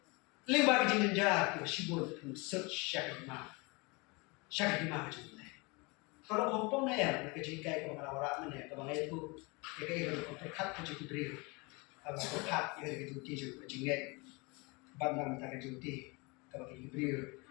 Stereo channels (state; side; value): quieter; right; 27.6 dB